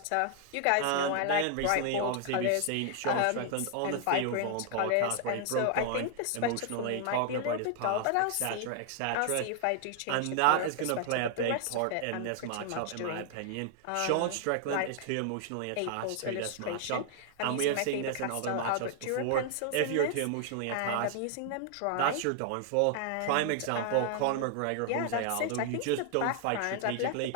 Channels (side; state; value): both; different; correlation 0.00